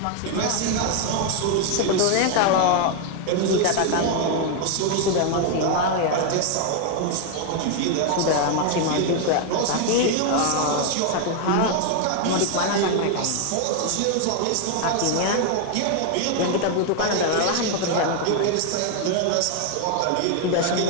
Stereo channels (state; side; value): different; both; correlation 0.00